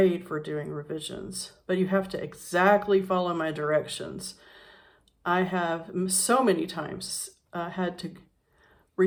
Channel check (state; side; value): identical; both; correlation 1.00